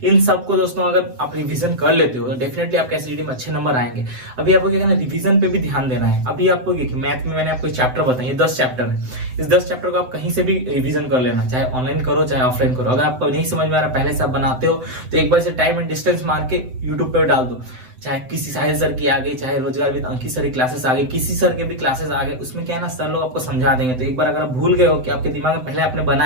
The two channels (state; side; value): late; left; 7.9 ms